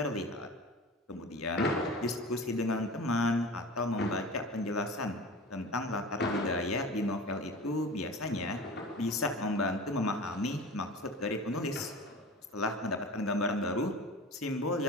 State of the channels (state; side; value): normal; both; correlation 0.35